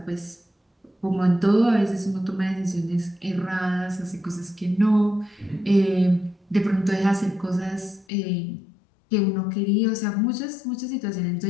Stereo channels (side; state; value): right; drops out; at 8.1 s